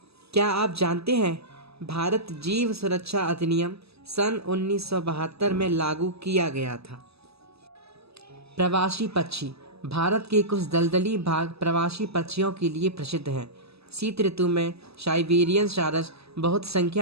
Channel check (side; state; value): left; late; 0.79 ms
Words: क्या आप जानते हैं भारत जीव सुरक्षा अधिनियम सन 1972 में लागू किया गया था। प्रवासी पक्षी, भारत के कुछ दलदली भाग प्रवासी पक्षियों के लिए प्रसिद्ध हैं। शीत ऋतु में साइबेरियन सारस बहुत